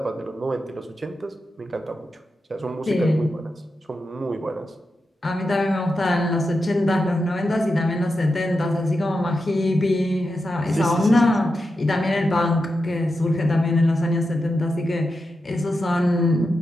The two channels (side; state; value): both; normal; correlation 0.88